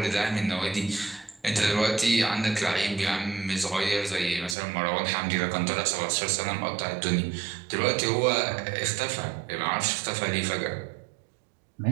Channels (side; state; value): left; drops out; at 4.5 s